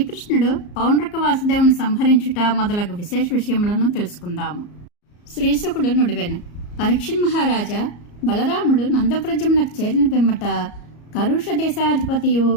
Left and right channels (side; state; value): right; late; 34 ms